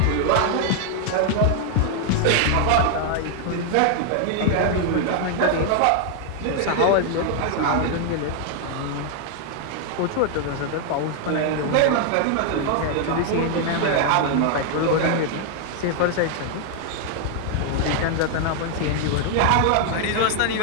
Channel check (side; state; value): both; different; correlation 0.00